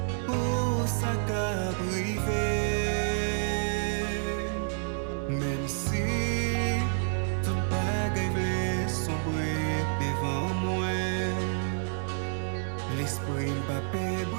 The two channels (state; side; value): silent; left; 58 dB below the other